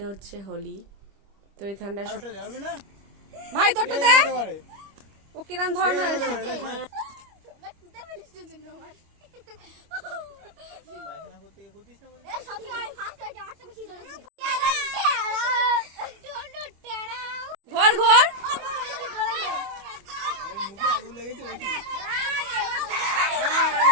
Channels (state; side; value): late; left; 25 ms